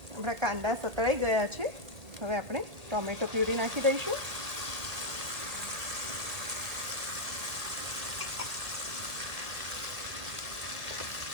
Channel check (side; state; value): left; late; 1.9 ms